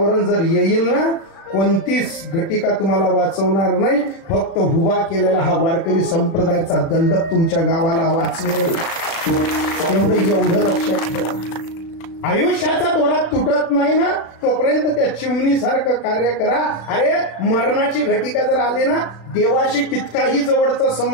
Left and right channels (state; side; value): late; right; 36 ms